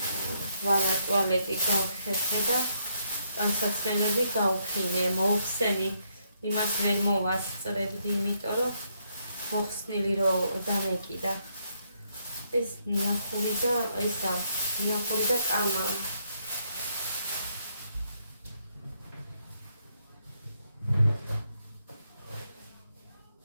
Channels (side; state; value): both; inverted; correlation -0.75